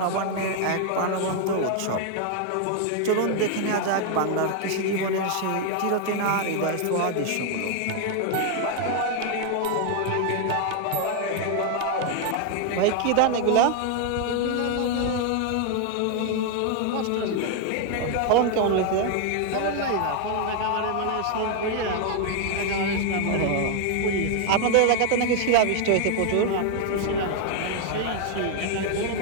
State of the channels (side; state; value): both; different; correlation 0.00